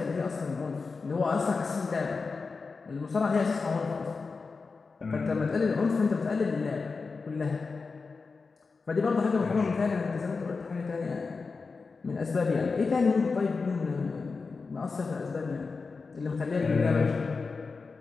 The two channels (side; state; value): right; quieter; 4.5 dB